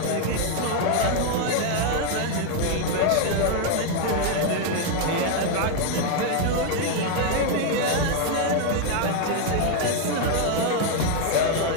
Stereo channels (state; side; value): different; both; correlation 0.00